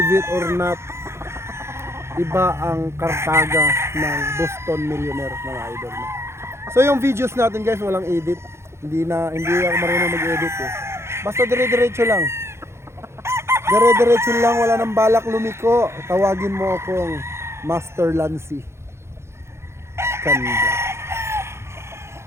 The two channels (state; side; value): late; left; 0.13 ms